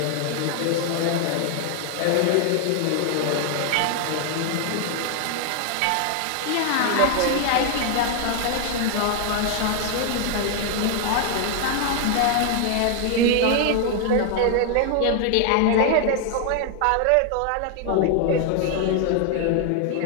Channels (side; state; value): both; different; correlation 0.00